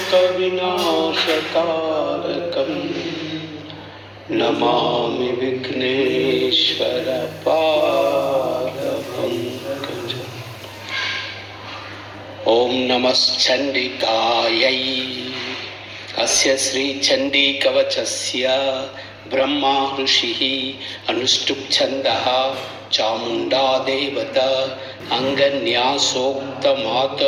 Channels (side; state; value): both; identical; correlation 1.00